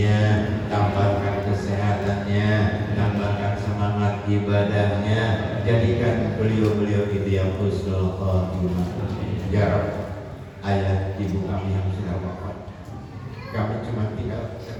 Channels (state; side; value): identical; both; correlation 1.00